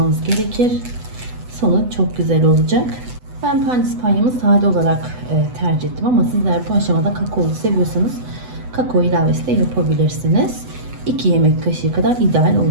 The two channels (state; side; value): late; left; 8.0 ms